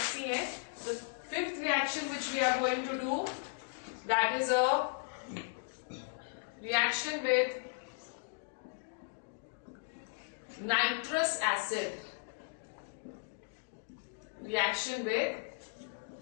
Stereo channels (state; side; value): silent; right; digital silence